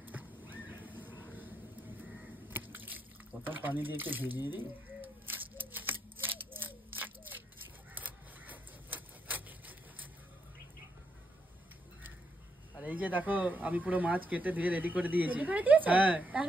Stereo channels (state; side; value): normal; both; correlation 0.79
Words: প্রথম পানি দিয়ে একটু ভিজিয়ে দিই। আর এই যে দেখো আমি পুরো মাছ কেটে ধুয়ে রেডি করে দিয়েছি। হ্যাঁ,